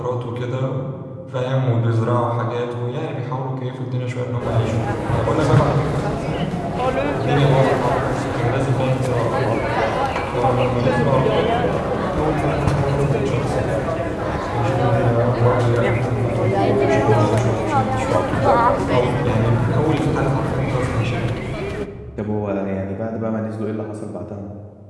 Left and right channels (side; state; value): both; identical; correlation 1.00